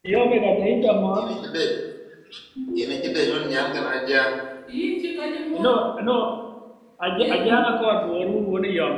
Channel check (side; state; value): both; identical; correlation 1.00